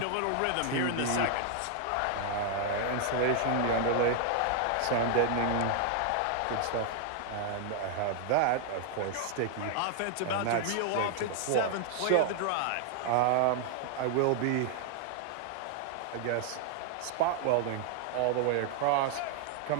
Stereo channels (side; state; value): both; different; correlation 0.00